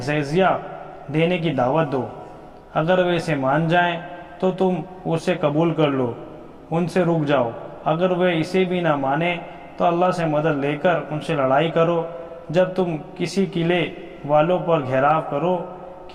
جزیہ دینے کی دعوت دو، اگر وہ اسے مان جائیں تو تم اسے قبول کر لو، ان سے رک جاؤ، اگر وہ اسے بھی نہ مانیں تو اللہ سے مدد لے کر ان سے لڑائی کرو۔ جب تم کسی قلعے والوں پر گھیراؤ کرو،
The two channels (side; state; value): both; identical; correlation 1.00